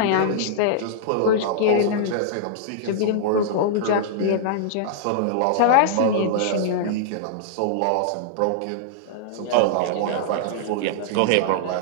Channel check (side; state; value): both; different; correlation -0.01